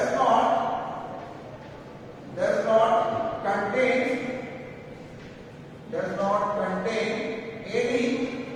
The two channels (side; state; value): both; identical; correlation 1.00